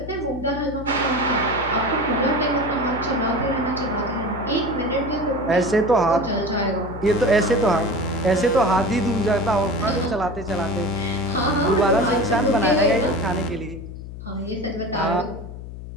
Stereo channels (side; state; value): left; noise; hum, 11 dB below the sound